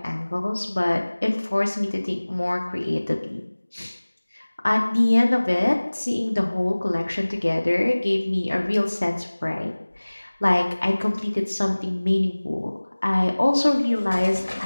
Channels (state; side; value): inverted; both; correlation -1.00